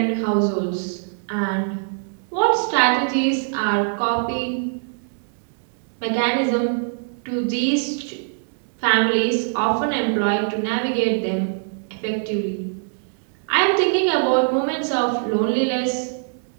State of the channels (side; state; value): left; silent; digital silence